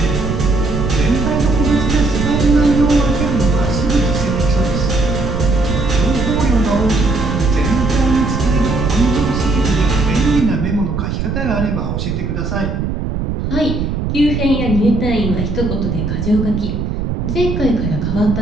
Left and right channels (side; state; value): right; noise; rumble, 3 dB below the sound